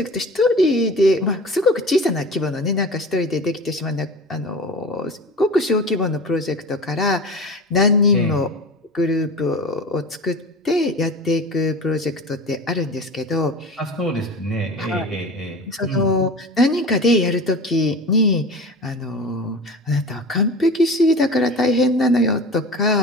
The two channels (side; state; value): both; normal; correlation 0.34